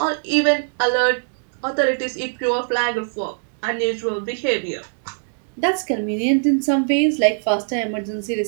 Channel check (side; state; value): left; silent; digital silence